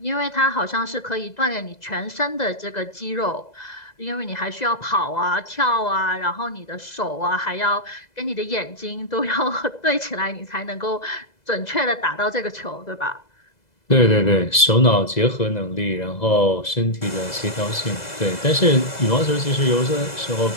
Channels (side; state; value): right; late; 2.0 ms